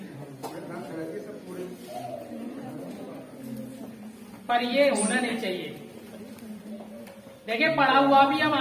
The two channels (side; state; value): both; identical; correlation 1.00